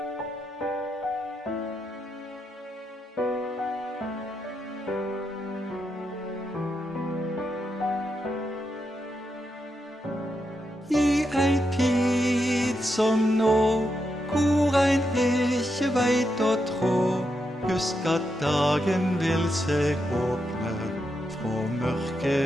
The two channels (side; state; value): both; normal; correlation 0.84